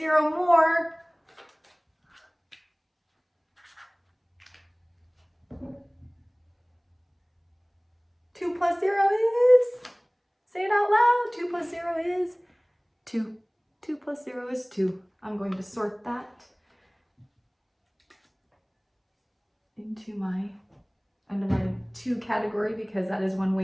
more. Two plus 0 is, say it out loud, 2 plus 0 is 2. 2 plus 0 is 2. I'm going to sort that under my 2 category because that is one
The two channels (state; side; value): identical; both; correlation 1.00